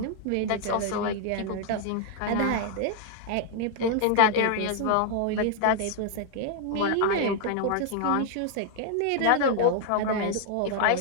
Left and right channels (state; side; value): different; both; correlation 0.00